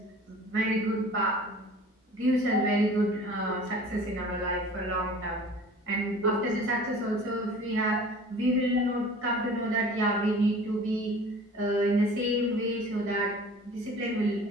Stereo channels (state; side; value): normal; both; correlation 0.44